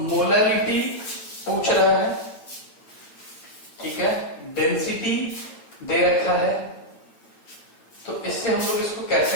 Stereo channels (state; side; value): late; right; 9.0 ms